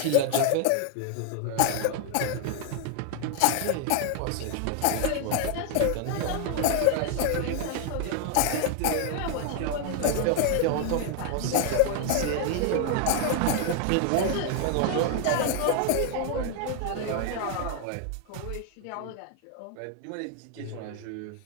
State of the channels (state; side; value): different; both; correlation 0.00